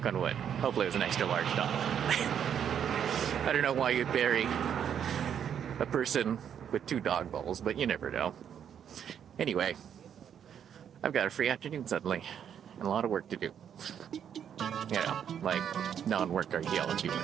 on wood. Hopefully it was an extra large dog. I don't know why you'd bury a person with 2 dog bowls, but you never know. Anyway, I've got a free afternoon suddenly, and a lot of work to do. You know, like non-work archaeology work.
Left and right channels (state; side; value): quieter; left; 8.7 dB